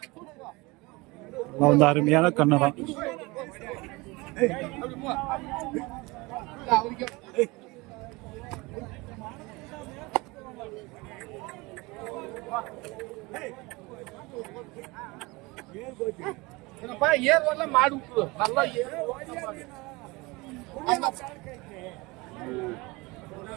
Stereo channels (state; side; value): quieter; left; 24.0 dB